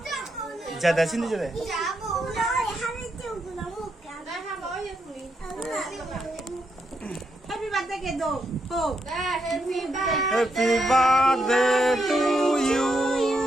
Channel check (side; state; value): both; normal; correlation 0.80